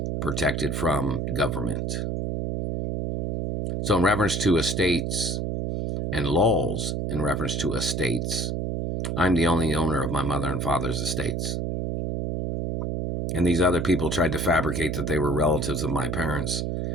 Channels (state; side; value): noise; right; hum, 1 dB below the sound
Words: protected from government. So in reference to estates and laws in reference to estates, I'm the only owner of my mother and father's estates. And these other people tried to fabricate that they were relatives of my parents,